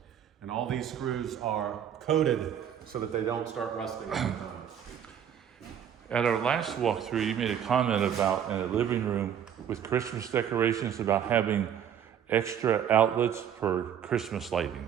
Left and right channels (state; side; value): quieter; left; 9.1 dB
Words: And all these screws are coated so that they don't start rusting over time. At our last walkthrough, you made a comment about in a living room with Christmas decorations about having extra outlets for Christmas